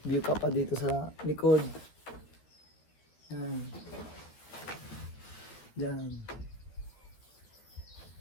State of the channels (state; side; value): late; right; 13 ms